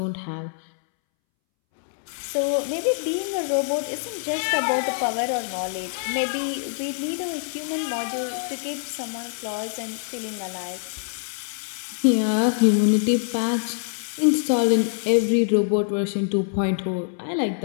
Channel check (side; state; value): right; silent; 62 dB below the other